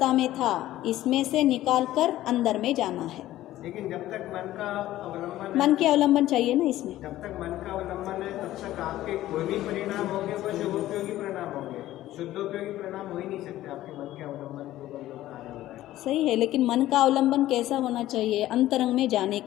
में था, इसमें से निकाल कर अंदर में जाना है। लेकिन जब तक मन का अवलंबन मन के अवलंबन चाहिए ना इसमें। जब तक मन का अवलंबन है तब तक आपके कोई भी परिणाम होंगे वो शुभोपयोगी परिणाम होंगे, शुद्धोपयोगी परिणाम हो ही नहीं सकते आपके मन के अवलंबन के ऊपर जो कार्य हो रहा है। सही है, लेकिन मन का अवलंबन कैसा होना चाहिए? अंतरंग में जाने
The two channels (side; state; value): right; quieter; 14.6 dB